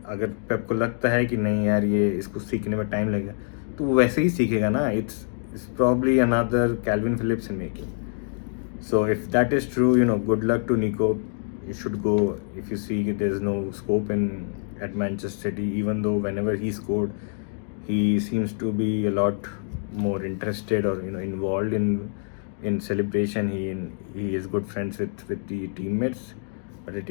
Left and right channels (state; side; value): silent; right; 61 dB below the other